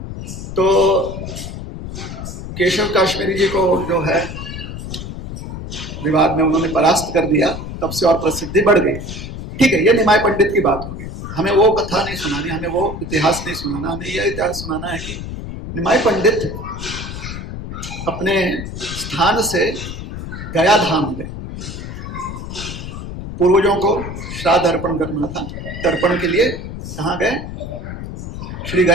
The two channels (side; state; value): left; noise; rumble, 8 dB below the sound